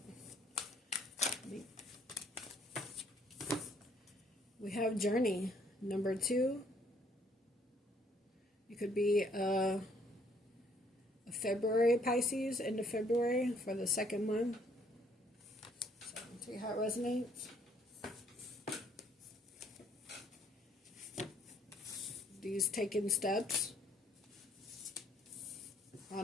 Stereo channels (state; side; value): normal; both; correlation 0.65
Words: We have Journey, number 2. You could be a February Pisces, into February for the second month. So, see how it resonates. These taking steps